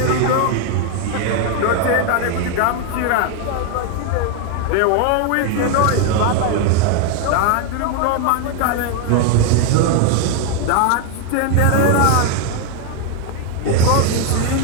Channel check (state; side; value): different; both; correlation 0.01